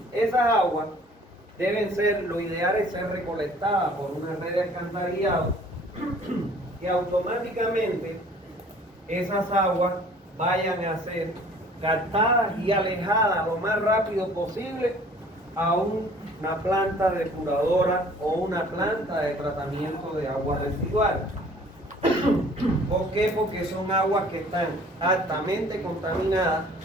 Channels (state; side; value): normal; both; correlation 0.52